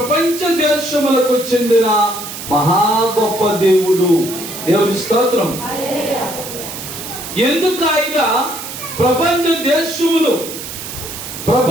దేశములకు చెందిన మహా గొప్ప దేవుడు. దేవుని స్తోత్రం. ఎందుకు ఆయన ప్రపంచ దేశములు,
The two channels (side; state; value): right; noise; hiss, 9 dB below the sound